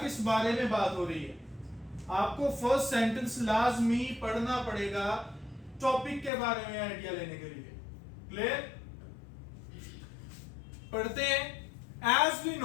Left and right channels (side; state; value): right; drops out; at 6.3 s